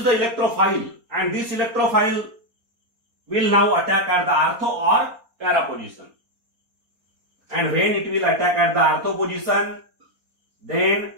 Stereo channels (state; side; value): late; left; 4.3 ms